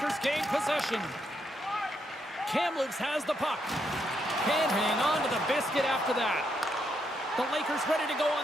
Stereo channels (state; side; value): normal; both; correlation 0.78